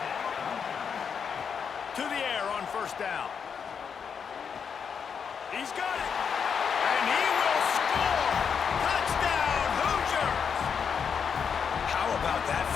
To the air on first down. He's got it. And he will score. Touchdown, Hoosiers. How about that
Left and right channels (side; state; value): right; quieter; 6.7 dB